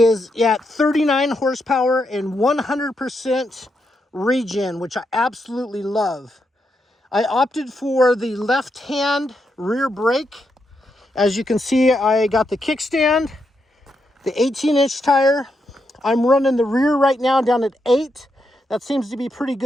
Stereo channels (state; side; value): normal; both; correlation 0.82